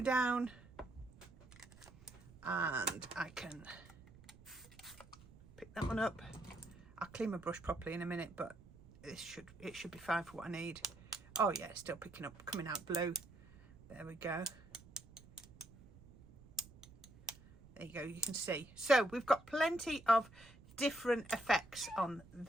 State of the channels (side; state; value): right; noise; rumble, 21 dB below the sound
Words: down and I can pick that one up. I'll clean my brush properly in a minute, but it should be fine for what I need. Oh yeah, it's still picking up, coming out blue. There we go. There you go, you can see. So we've got plenty of different effects on